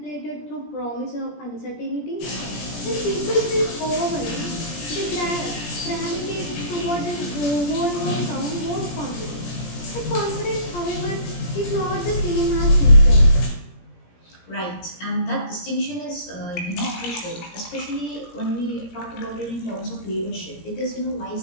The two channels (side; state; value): right; late; 17 ms